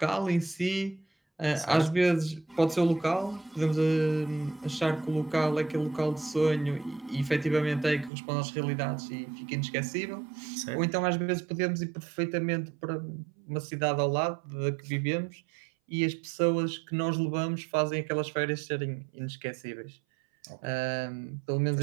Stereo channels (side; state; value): left; drops out; at 8.1 s